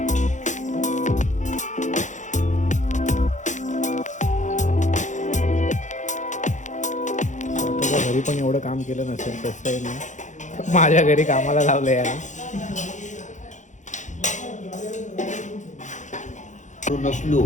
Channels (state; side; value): late; right; 0.35 ms